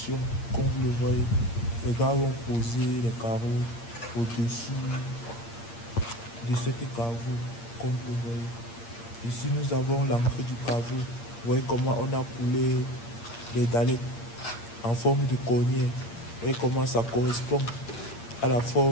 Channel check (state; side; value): late; right; 8.6 ms